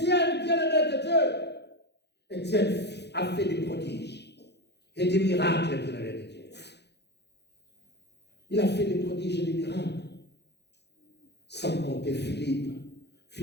bien-aimé de Dieu. Étienne a fait des prodiges et des miracles, bien-aimé de Dieu. Il a fait des prodiges et des miracles. Sans compter Philippe.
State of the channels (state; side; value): late; right; 0.49 ms